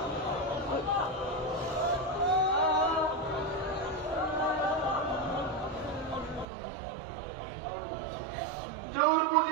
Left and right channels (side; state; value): left; drops out; at 6.5 s